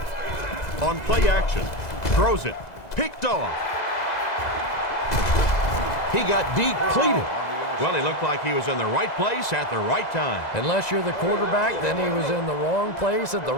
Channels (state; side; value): late; right; 2.0 ms